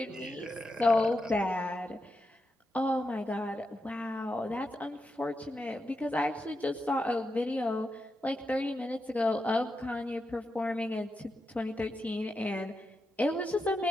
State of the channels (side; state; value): both; normal; correlation 0.87